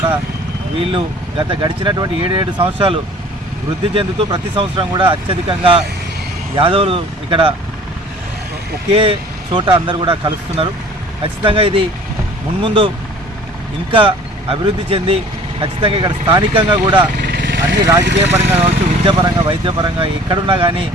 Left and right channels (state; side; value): normal; both; correlation 0.49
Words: వీళ్ళు గడిచినటువంటి 7 సంవత్సరాలు వృద్ధి చెందుతూ ప్రతి సంవత్సరం కూడా అత్యధికంగా యాదవులు ఇక్కడ ఒకే చోట అందరూ కూడా కలుస్తున్నారు. ఖచ్చితంగా ఇది మున్ముందు ఇంకా అభివృద్ధి చెంది ఖచ్చితంగా ఇక్కడ స్థానికంగా కూడా అన్ని రాజకీయ పరంగా కావచ్చు, విద్యాపరంగా, వైద్యపరంగా ఎక్కడున్నా కానీ